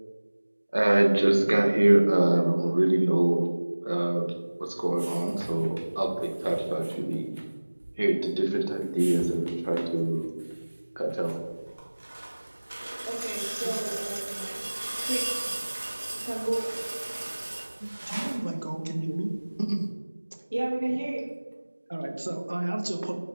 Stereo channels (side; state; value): both; inverted; correlation -1.00